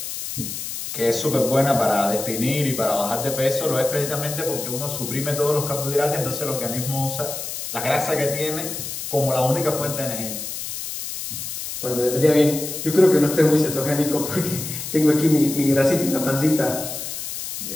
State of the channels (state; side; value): noise; left; hiss, 7 dB below the sound